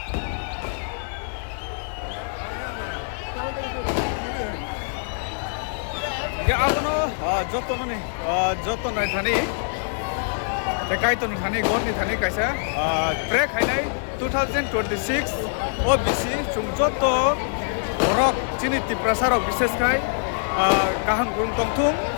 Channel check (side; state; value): right; silent; 62 dB below the other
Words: Ya abono jotono ni jotono thani tekai ton thani gorni thani kaisa break hainai 2026 OBC chungjoto borok chini tiprasarok bishes kai kaham gurung tongthum